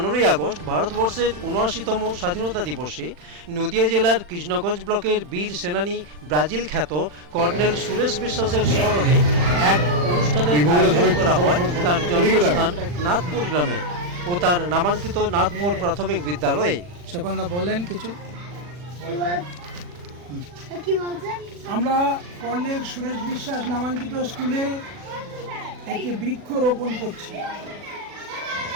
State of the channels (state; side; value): late; left; 40 ms